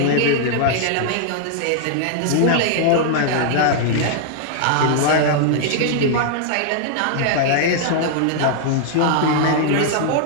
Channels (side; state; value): both; different; correlation -0.01